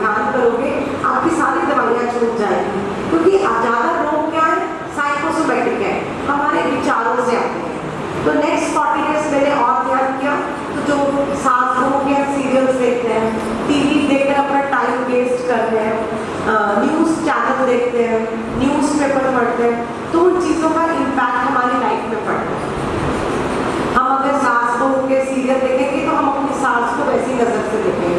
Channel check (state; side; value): identical; both; correlation 1.00